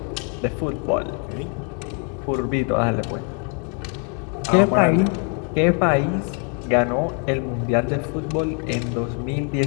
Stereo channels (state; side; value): quieter; right; 39.4 dB